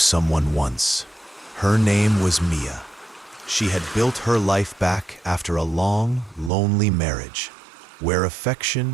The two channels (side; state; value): left; drops out; at 6.5 s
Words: once. Her name was Mia. She had built her life back after a long, lonely marriage, where